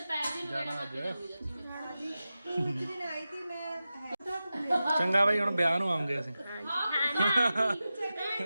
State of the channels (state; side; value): inverted; both; correlation -0.93